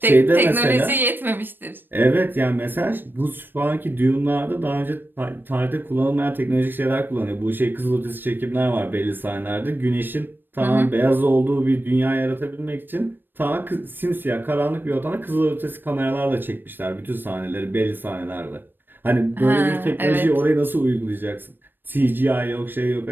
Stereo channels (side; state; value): left; late; 0.095 ms